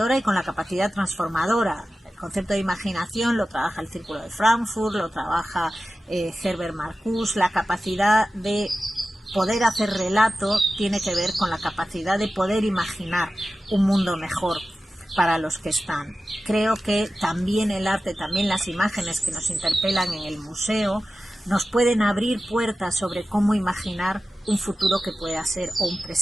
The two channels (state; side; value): normal; both; correlation 0.94